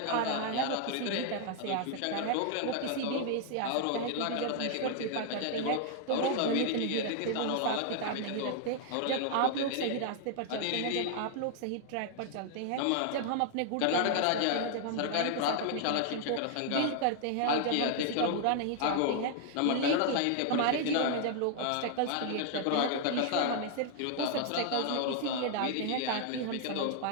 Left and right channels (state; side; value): different; both; correlation 0.00